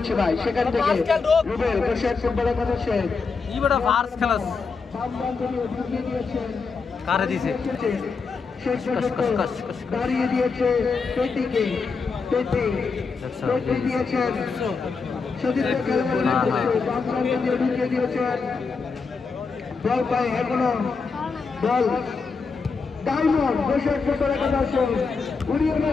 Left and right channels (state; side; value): quieter; right; 4.8 dB